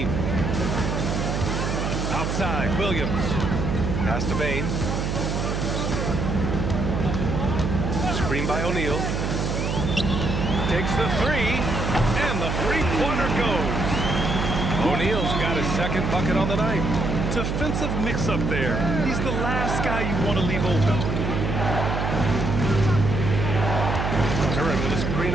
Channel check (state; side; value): noise; right; hum, 1 dB below the sound